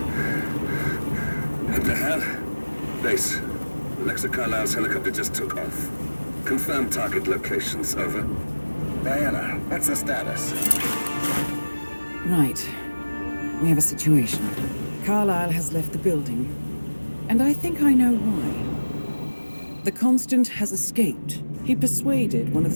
What the hell? Base. Alexa Carlisle's helicopter just took off. Confirm target locations, over. Diana, what's the status? Right. We have a situation. Carlisle has left the building. And I think I know why. The Constant has escaped. He persuaded one of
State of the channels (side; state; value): both; inverted; correlation -1.00